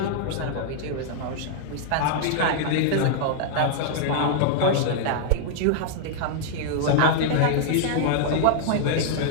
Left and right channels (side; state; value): both; different; correlation -0.01